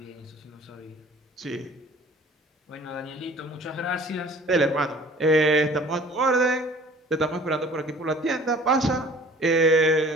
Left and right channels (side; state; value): both; normal; correlation 0.50